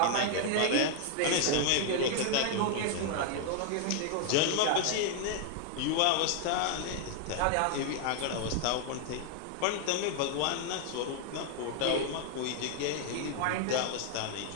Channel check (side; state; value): both; different; correlation 0.00